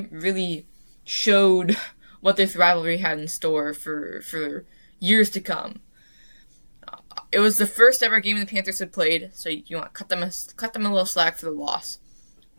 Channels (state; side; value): inverted; both; correlation -1.00